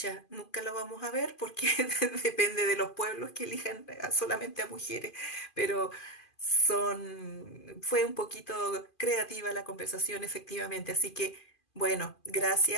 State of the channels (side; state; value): right; late; 2.5 ms